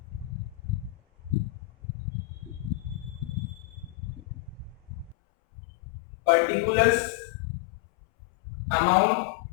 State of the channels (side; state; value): right; drops out; at 5.2 s